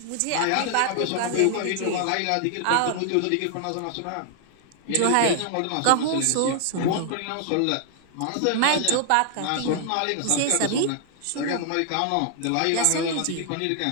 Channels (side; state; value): both; different; correlation 0.00